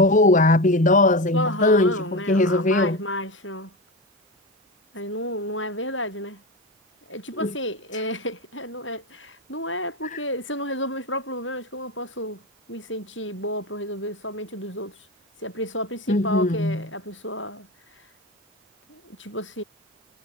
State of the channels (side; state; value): both; normal; correlation 0.21